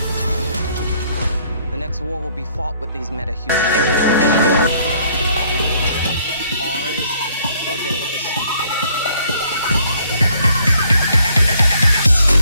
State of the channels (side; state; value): both; inverted; correlation -0.63